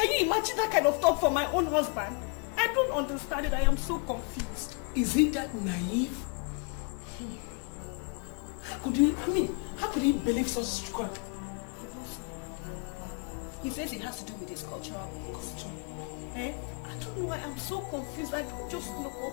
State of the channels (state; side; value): quieter; right; 34.6 dB